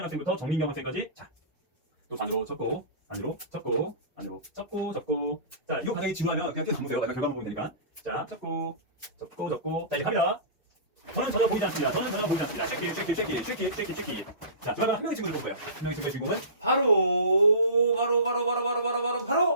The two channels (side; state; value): both; inverted; correlation -0.33